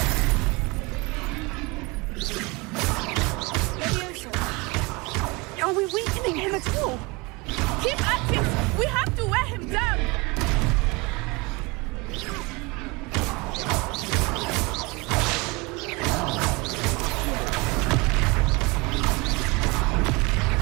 Are we weakening him at all? Keep at it! We have to wear him down!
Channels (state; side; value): quieter; left; 26.2 dB